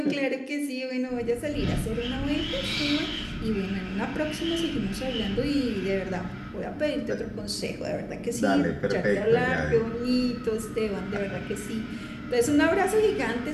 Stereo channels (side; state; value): both; identical; correlation 1.00